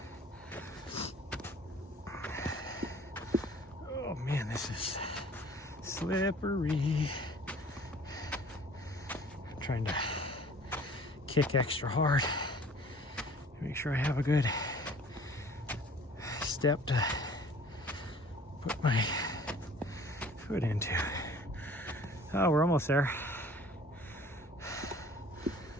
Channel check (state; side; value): normal; both; correlation 0.50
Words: Oh man, this is slippery. I'm trying to kick extra hard. Make sure I have a good step to put my foot into. Oh, we're almost there.